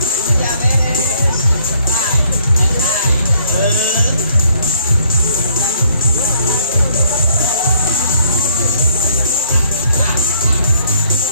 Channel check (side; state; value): both; inverted; correlation -0.66